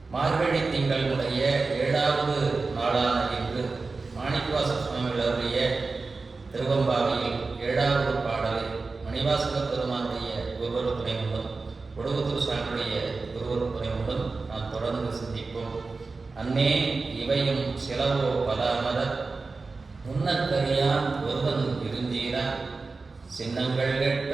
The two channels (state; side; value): quieter; left; 4.0 dB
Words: மார்கழி திங்களுடைய 7வது நாளான இன்று மாணிக்கவாச சுவாமிகள் அவருடைய திருவம்பாவையில் 7வது பாடலை மணிவாசக பெருமானுடைய குருவரு துணை உண்டும் கொடுகத்தூர் சாமியுடைய குருவரு துணை உண்டும் நாம் தொடர்ந்து சிந்திப்போம். அன்னே இவையும் சிலவோ பலாமர முன்னக்கரியான் ஒருவன் இருந்தீரா சின்னங்கள் கேட்ப